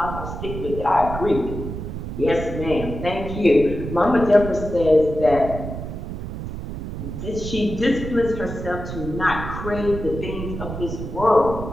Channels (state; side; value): noise; right; rumble, 7 dB below the sound